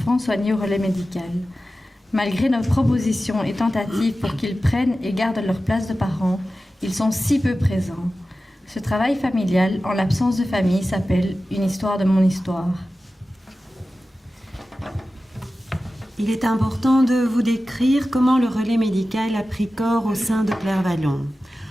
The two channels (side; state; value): both; normal; correlation 0.94